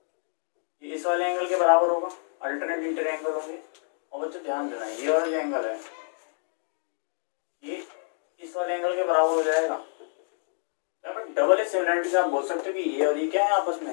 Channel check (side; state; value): right; silent; digital silence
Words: ये इस वाले एंगल के बराबर होगा, अल्टरनेट इंटर एंगल होंगे। और बच्चों ध्यान देना, ये वाला जो एंगल है ये इस वाले एंगल के बराबर हो जाएगा। यहाँ पर डबल सिमिलरिटी से आप बोल सकते हो कि ये और ये क्या है, आपस में